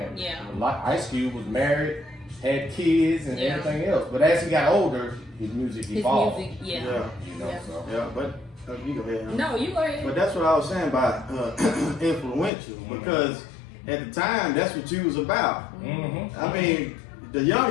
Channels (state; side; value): drops out; right; at 12.5 s